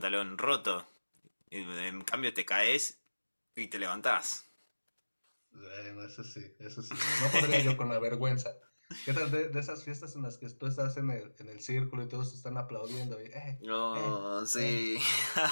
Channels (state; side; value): inverted; both; correlation -1.00